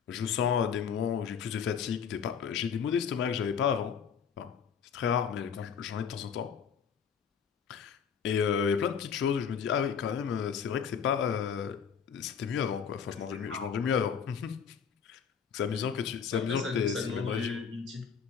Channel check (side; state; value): right; quieter; 7.1 dB